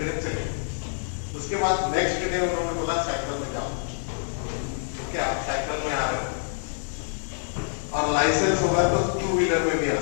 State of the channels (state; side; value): silent; right; digital silence